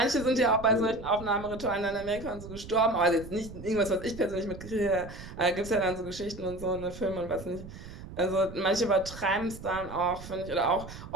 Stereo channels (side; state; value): right; noise; rumble, 13 dB below the sound